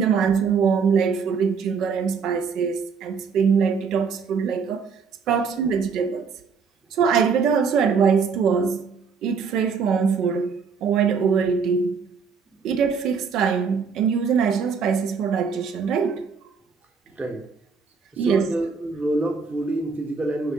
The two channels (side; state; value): left; quieter; 5.7 dB